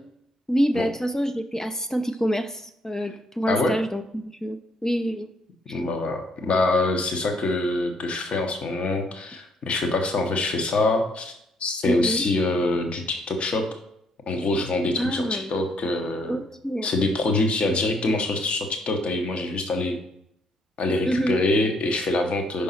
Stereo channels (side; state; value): both; normal; correlation 0.70